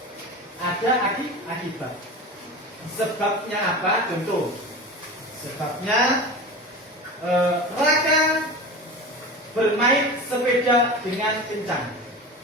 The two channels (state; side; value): normal; both; correlation 0.31